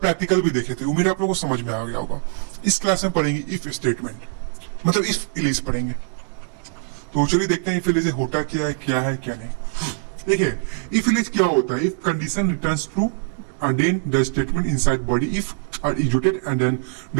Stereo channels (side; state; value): left; silent; digital silence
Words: भी देखे थे। उम्मीद है आप लोग को समझ में आ गया होगा। इस क्लास में पढ़ेंगे इफ स्टेटमेंट, मतलब इफ एल्स पढ़ेंगे। तो चलिए देखते हैं इफ एल्स होता क्या है क्या नहीं। देखिए इफ एल्स क्या होता है। If condition returns true and then the statement inside body if are executed and then